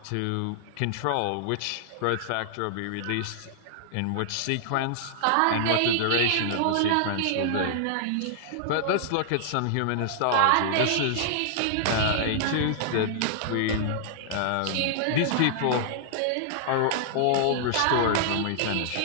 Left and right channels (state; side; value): different; both; correlation -0.01